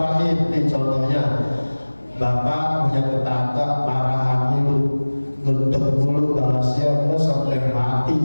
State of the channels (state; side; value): inverted; both; correlation -1.00